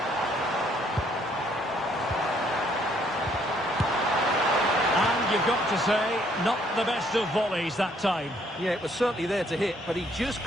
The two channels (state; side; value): normal; both; correlation 0.66